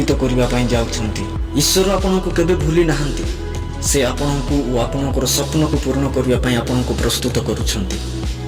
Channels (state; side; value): identical; both; correlation 1.00